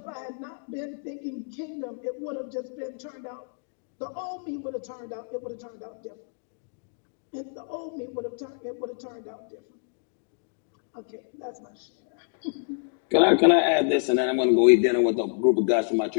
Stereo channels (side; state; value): right; silent; digital silence